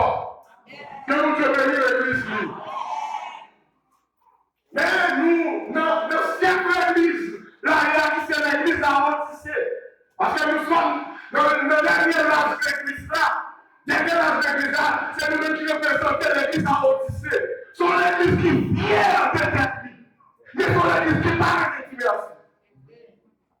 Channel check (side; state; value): both; identical; correlation 1.00